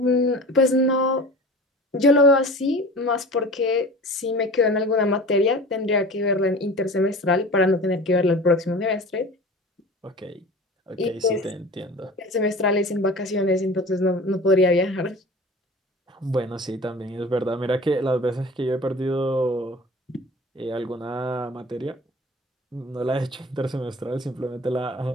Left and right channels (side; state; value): both; normal; correlation 0.39